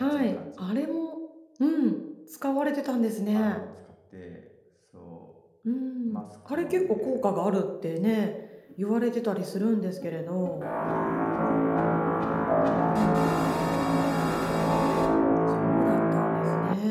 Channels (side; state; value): both; identical; correlation 1.00